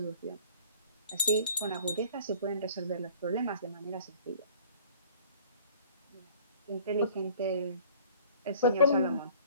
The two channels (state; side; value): inverted; both; correlation -0.51